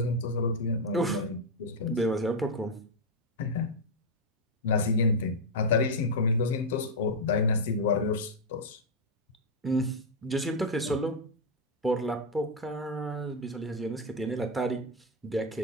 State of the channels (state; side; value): normal; both; correlation 0.01